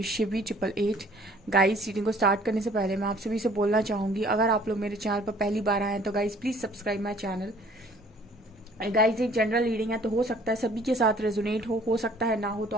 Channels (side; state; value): both; normal; correlation 0.55